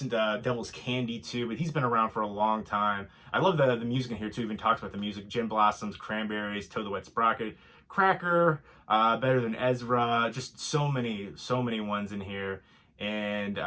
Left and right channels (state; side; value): identical; both; correlation 1.00